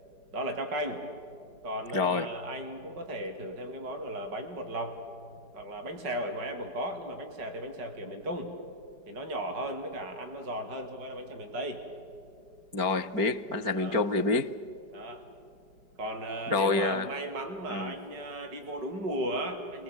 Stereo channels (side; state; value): left; late; 4.9 ms